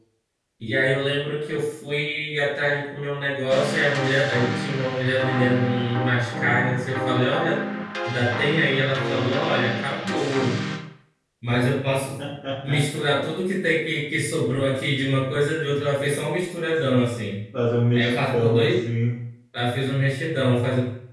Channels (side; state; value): both; identical; correlation 1.00